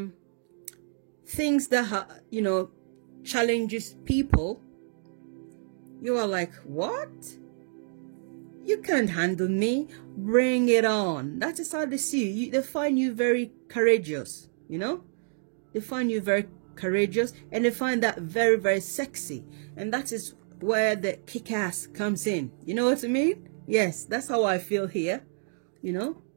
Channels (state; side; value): silent; left; digital silence